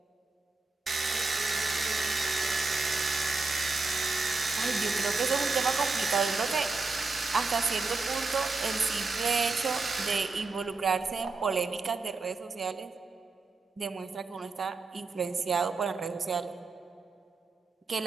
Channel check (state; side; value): quieter; left; 3.9 dB